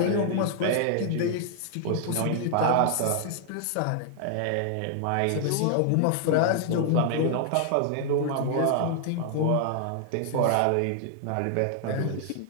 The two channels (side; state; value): both; different; correlation 0.00